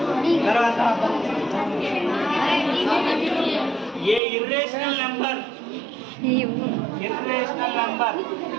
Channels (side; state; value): left; drops out; at 4.2 s